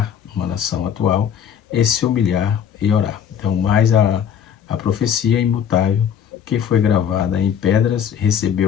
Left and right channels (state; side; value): quieter; right; 8.4 dB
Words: uma nação atual e se humilhar e orar. Então, mais a profecia imutável que foi gravada em pedras